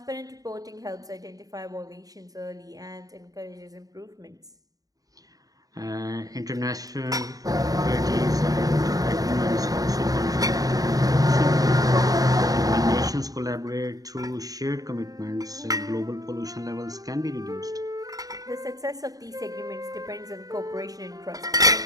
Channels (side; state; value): left; late; 0.18 ms